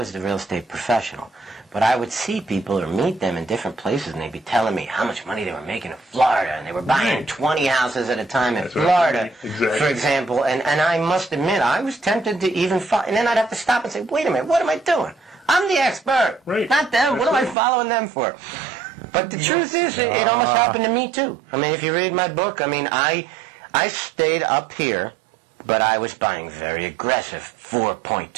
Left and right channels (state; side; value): drops out; left; at 17.6 s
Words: the real estate professional. But I would see people or meet them in different places, and they'd be telling me how much money they were making in Florida, and they were buying 20 houses at a time in Florida, for example. And I must admit, I was tempted to even follow. And then I'd have to stop and say, wait a minute, what am I doing? I'm the expert, not them. What am I following them for? But the truth is, it almost happened to me, too. I mean, if you read my book, I stayed up here, but I was buying very aggressive